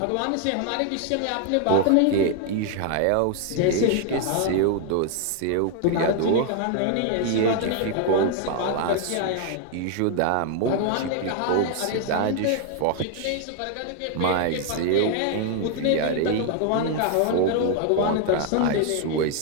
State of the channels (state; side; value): different; both; correlation 0.00